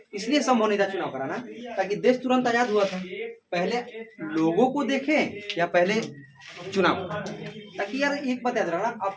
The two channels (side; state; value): both; identical; correlation 1.00